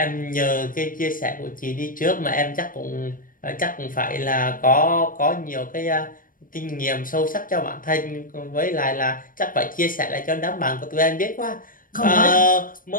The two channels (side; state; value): right; late; 0.40 ms